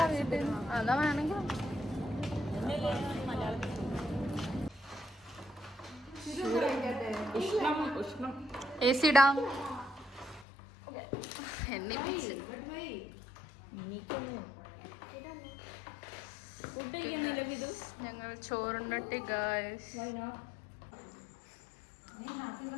വീട്ടിൽ അതാ വേണമെങ്കിൽ AC ഇടാം. എണ്ണിപ്പിച്ച് ഞങ്ങൾ ചോറുണ്ടട്ടി guys.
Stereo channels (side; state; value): right; drops out; at 10.5 s